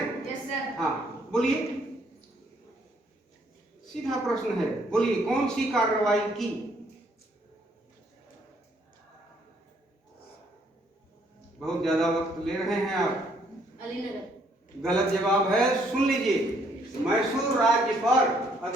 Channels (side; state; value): both; normal; correlation 0.67